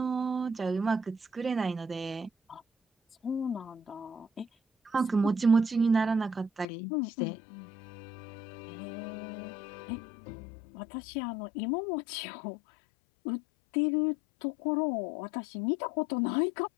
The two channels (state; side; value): drops out; right; at 6.7 s